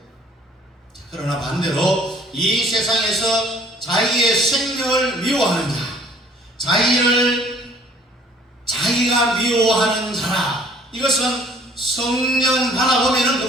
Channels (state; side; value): normal; both; correlation 0.56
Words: 그러나 반대로 이 세상에서 자기의 생명을 미워하는 자, 자기가 미워하는 자라, 이것은 성령 받아보면